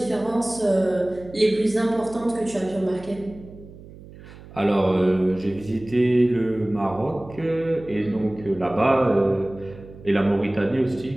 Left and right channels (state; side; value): noise; right; hum, 18 dB below the sound